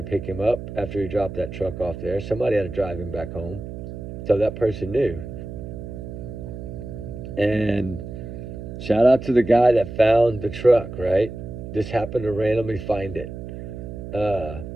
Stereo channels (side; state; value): right; noise; hum, 9 dB below the sound